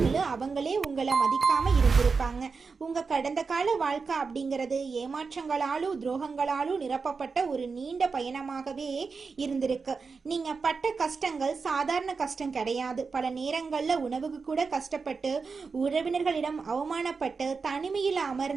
அவங்களே உங்களை மதிக்காம இருந்திருப்பாங்க. உங்க கடந்த கால வாழ்க்கை அப்படிங்கிறது ஏமாற்றங்களாலும் துரோகங்களாலும் நிரப்பப்பட்ட ஒரு நீண்ட பயணமாகவே இருந்திருக்கு. நீங்க பட்ட கஷ்டங்கள் சாதாரண கஷ்டம் கிடையாது. பல நேரங்கள்ல உணவுக்கு கூட கஷ்டப்பட்டு, உறவினர்களிடம் அவமானப்பட்டு, தனிமையில்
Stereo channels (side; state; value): left; quieter; 4.8 dB